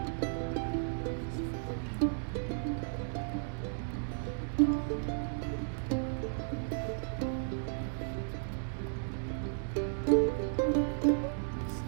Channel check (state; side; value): silent; left; digital silence